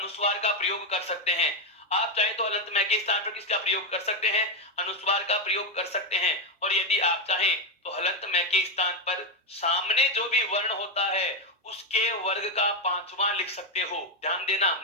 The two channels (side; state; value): both; normal; correlation 0.07